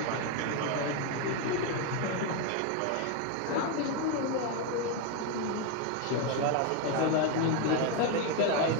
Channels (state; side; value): different; both; correlation 0.02